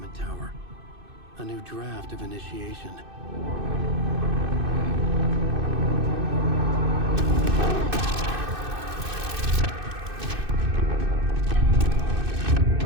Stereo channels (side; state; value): left; late; 2.6 ms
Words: Tower. A new draft of Initiation.